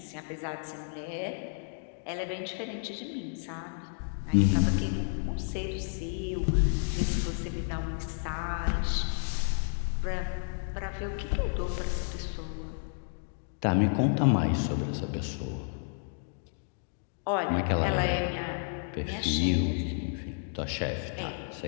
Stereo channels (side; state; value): right; silent; digital silence